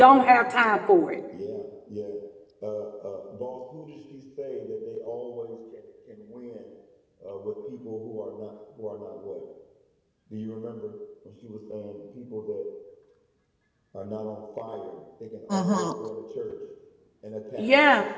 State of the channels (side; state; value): both; identical; correlation 1.00